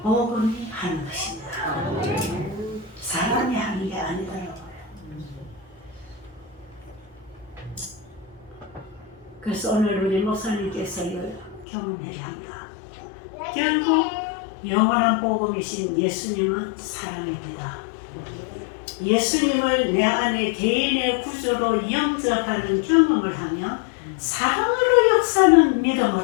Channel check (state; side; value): drops out; right; at 11.7 s